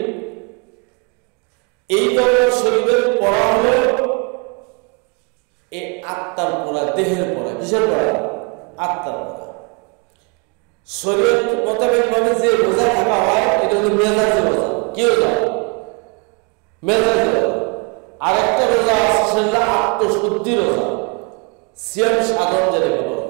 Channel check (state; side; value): quieter; left; 34.2 dB